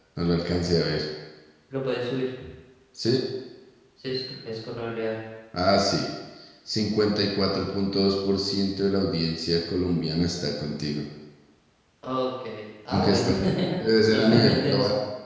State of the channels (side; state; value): both; identical; correlation 1.00